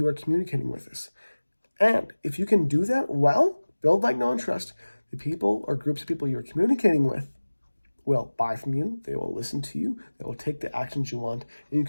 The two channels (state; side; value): inverted; both; correlation -1.00